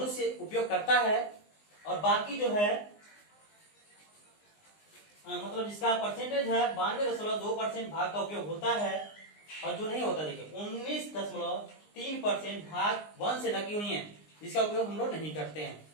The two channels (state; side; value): late; right; 19 ms